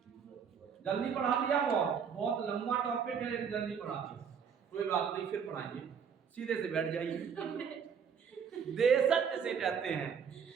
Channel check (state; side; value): quieter; left; 7.0 dB